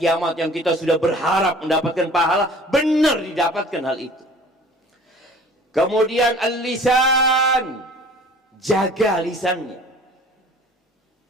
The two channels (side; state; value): both; normal; correlation 0.47